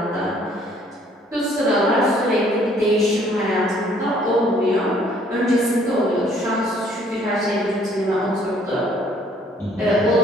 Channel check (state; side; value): normal; both; correlation 0.61